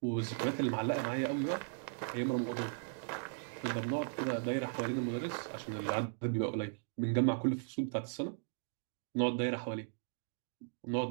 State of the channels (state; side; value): silent; left; digital silence